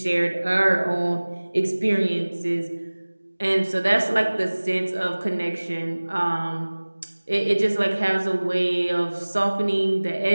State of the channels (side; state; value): both; inverted; correlation -1.00